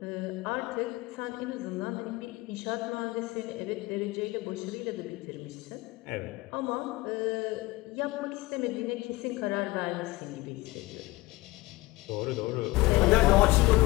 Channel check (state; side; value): quieter; right; 20.5 dB